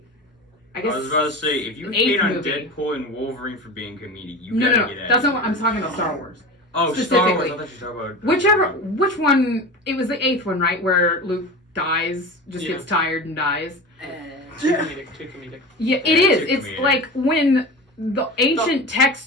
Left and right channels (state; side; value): normal; both; correlation 0.30